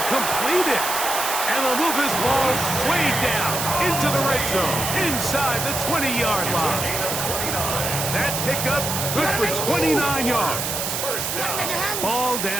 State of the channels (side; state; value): right; noise; hiss, 2 dB below the sound